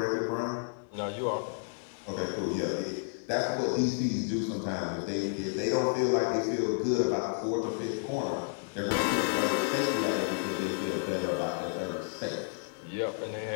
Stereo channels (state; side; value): silent; right; digital silence